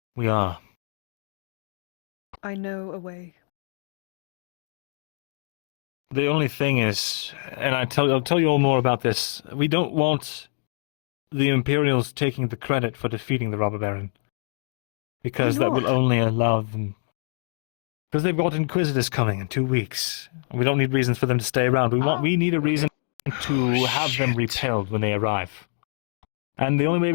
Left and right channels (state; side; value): silent; right; digital silence